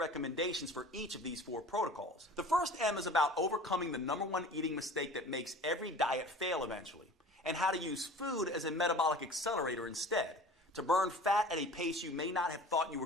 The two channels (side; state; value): both; normal; correlation 0.42